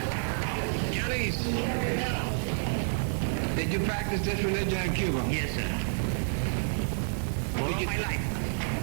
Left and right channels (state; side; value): silent; left; 55 dB below the other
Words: Please. Did you practice this religion in Cuba? Yes, sir. All my life.